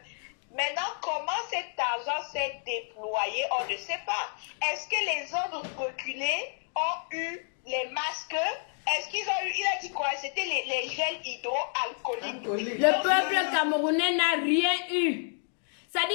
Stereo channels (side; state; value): right; silent; digital silence